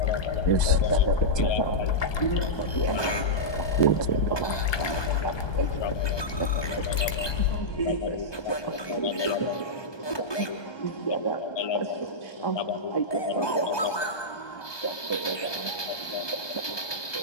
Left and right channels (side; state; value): right; late; 1.2 ms